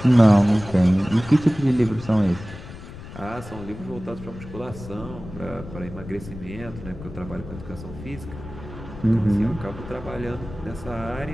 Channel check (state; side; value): noise; left; rumble, 13 dB below the sound